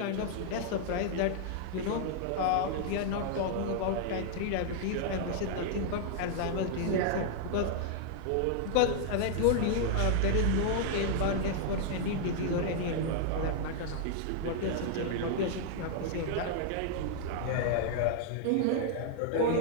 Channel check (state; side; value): different; both; correlation -0.01